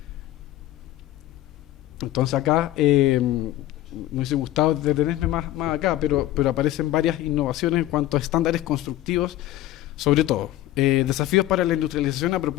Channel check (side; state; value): right; quieter; 14.5 dB